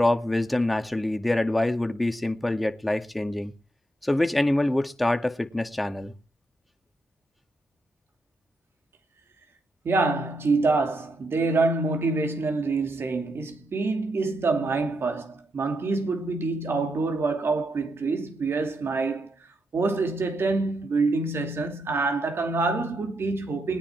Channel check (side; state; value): both; normal; correlation 0.82